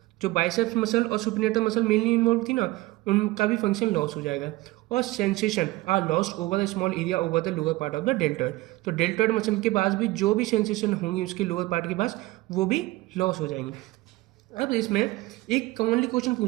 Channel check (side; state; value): left; quieter; 19.8 dB